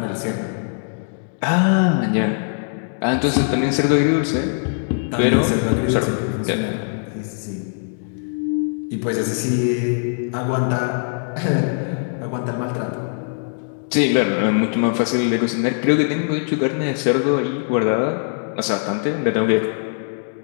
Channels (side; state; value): right; silent; digital silence